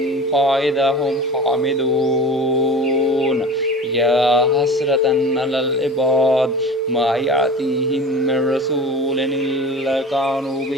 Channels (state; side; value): normal; both; correlation 0.36